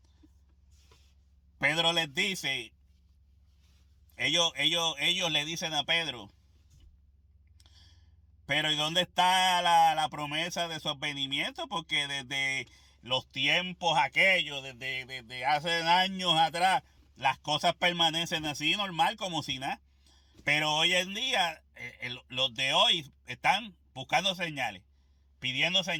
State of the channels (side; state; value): both; identical; correlation 1.00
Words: Pedro les dice, ellos le dicen a Pedro, pero ¿y dónde está la promesa de su advenimiento? Porque desde los tiempos aquellos, desde hace años atrás, las cosas permanecen así, normal, como si nada. Pero hoy en día, los de hoy están buscando señales, pidiendo